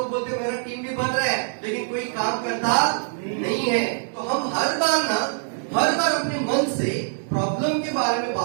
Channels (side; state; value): left; silent; digital silence